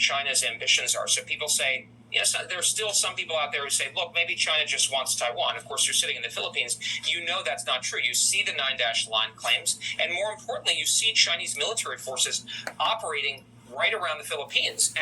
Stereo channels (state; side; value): identical; both; correlation 1.00